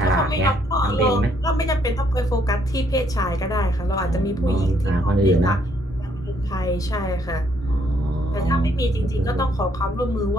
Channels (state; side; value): normal; both; correlation 0.69